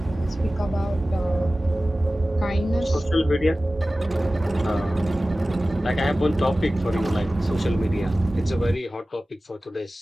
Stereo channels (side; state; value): both; normal; correlation 0.96